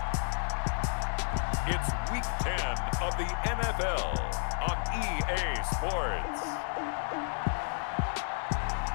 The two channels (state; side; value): silent; right; digital silence